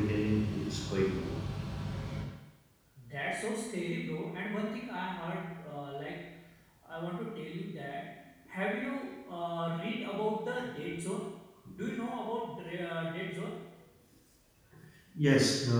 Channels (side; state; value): both; identical; correlation 1.00